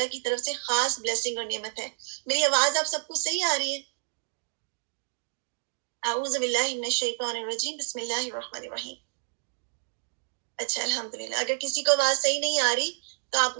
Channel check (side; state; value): left; silent; digital silence